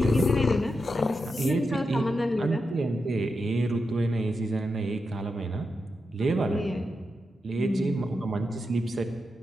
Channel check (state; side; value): normal; both; correlation 0.88